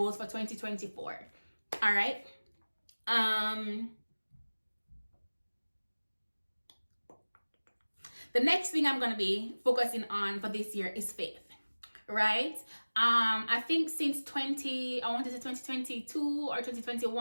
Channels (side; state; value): both; inverted; correlation -1.00